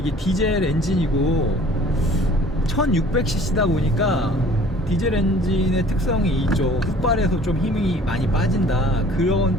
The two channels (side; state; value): both; normal; correlation 0.51